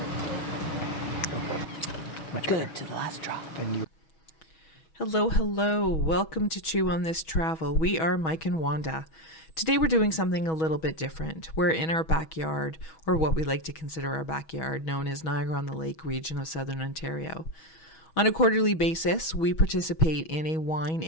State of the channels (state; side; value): late; right; 6.2 ms